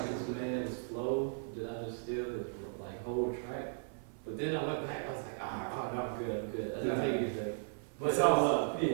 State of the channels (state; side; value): silent; left; 54 dB below the other